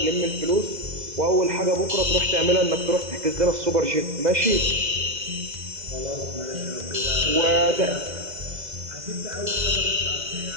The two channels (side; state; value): left; late; 2.0 ms